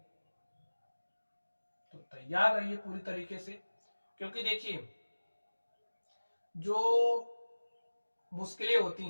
तो तैयार रहिए पूरी तरीके से, क्योंकि देखिए जो मुश्किलें होती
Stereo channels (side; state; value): both; inverted; correlation -1.00